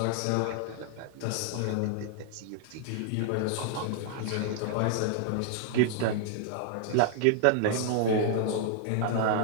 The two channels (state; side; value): different; both; correlation 0.00